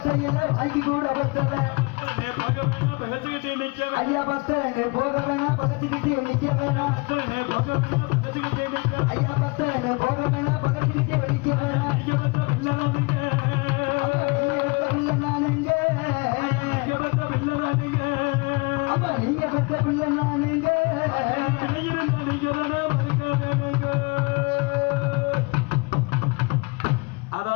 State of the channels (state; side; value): quieter; right; 28.8 dB